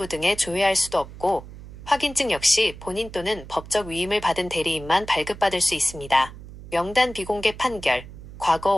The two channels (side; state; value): right; noise; hum, 15 dB below the sound